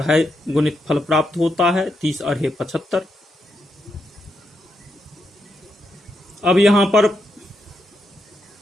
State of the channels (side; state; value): both; normal; correlation 0.82